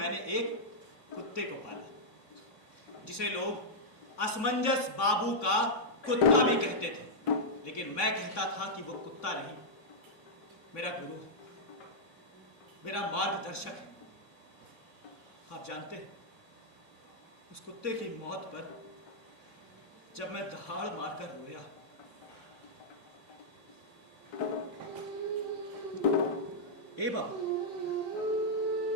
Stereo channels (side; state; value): right; late; 3.6 ms